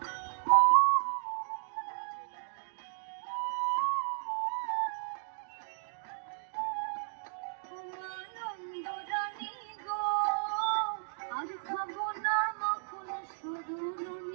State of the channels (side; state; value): left; silent; digital silence